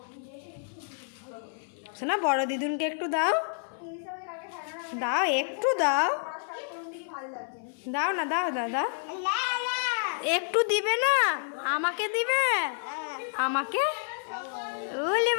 শোনা বড় দিদুনকে একটু দাও দাও, একটু দাও দাও না, দাও দাও দাও, একটু দিবে না, আমাকে দিবে, আমাকে ওলে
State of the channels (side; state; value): right; silent; 58 dB below the other